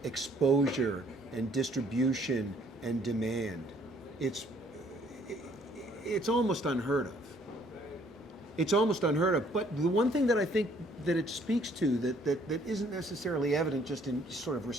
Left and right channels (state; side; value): normal; both; correlation 0.62